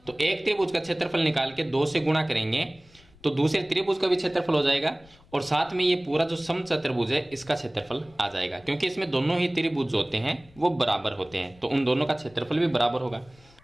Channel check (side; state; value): left; noise; rumble, 27 dB below the sound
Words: तो एक त्रिभुज का क्षेत्रफल निकाल के 2 से गुणा करेंगे तो दूसरे त्रिभुज का भी क्षेत्रफल हो जाएगा और साथ में ये पूरा जो समचतुर्भुज है इसका क्षेत्रफल आ जाएगा, क्योंकि इसमें दोनों ही त्रिभुज होते हैं वो बराबर होते हैं, तो उन दोनों का क्षेत्रफल भी बराबर होगा।